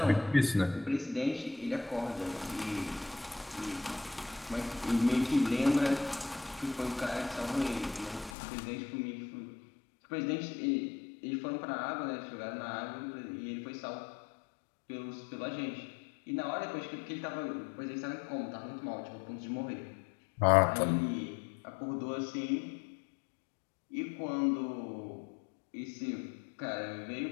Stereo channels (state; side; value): drops out; right; at 8.3 s